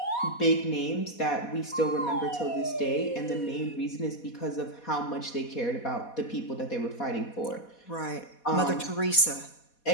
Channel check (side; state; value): right; late; 4.2 ms